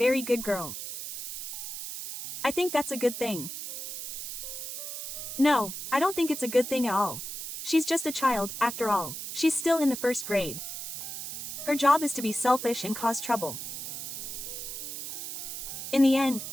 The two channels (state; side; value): noise; right; hiss, 7 dB below the sound